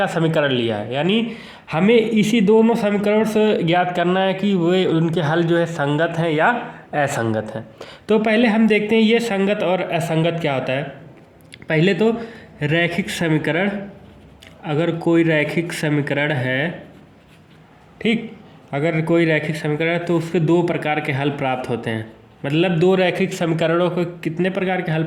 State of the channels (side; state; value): both; identical; correlation 1.00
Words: समीकरण लिया है, यानी हमें इसी दोनों समीकरण से ज्ञात करना है कि वे उनके हल जो है संगत हैं या असंगत हैं। तो पहले हम देखते हैं ये संगत और असंगत क्या होता है। पहले तो रैखिक समीकरण, अगर कोई रैखिक समीकरण है, ठीक, अगर कोई रैखिक समीकरण है तो उसके दो प्रकार के हल प्राप्त होते हैं। मतलब दो रैखिक समीकरणों को कितने प्रकार के हल